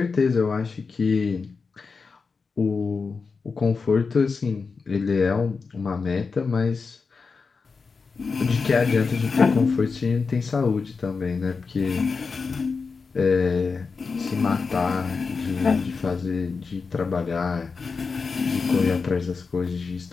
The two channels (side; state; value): right; quieter; 4.8 dB